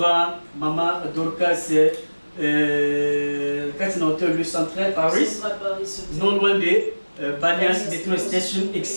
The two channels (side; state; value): both; inverted; correlation -1.00